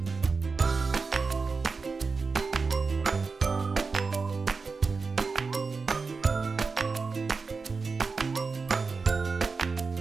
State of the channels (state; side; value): quieter; left; 4.6 dB